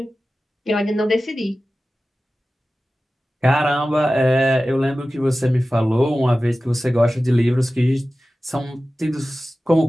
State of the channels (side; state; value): both; normal; correlation 0.95